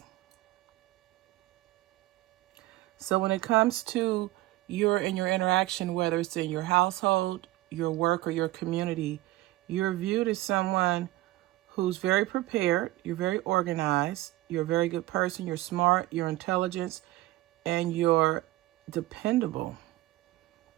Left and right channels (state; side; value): quieter; left; 17.7 dB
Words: So when it comes to your interaction, whether it's in your household, your work, or your community, you're viewed as someone who's very prepared, you're very organized, you're a very good person, you're smart, you're intelligent, and you're dependable.